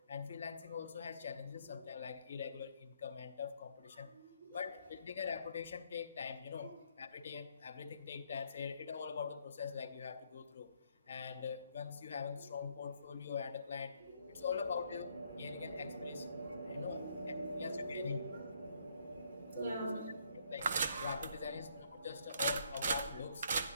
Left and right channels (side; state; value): both; inverted; correlation -0.70